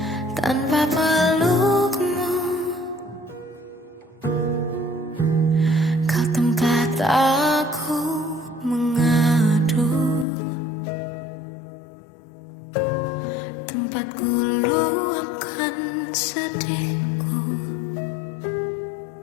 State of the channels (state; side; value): drops out; right; at 10.2 s